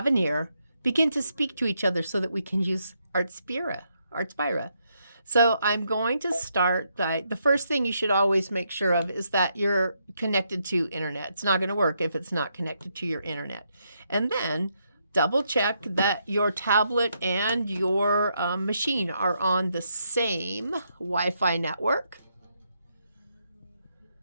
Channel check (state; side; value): inverted; both; correlation -0.78